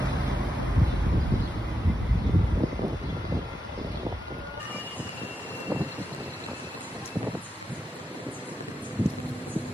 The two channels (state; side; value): normal; both; correlation 0.87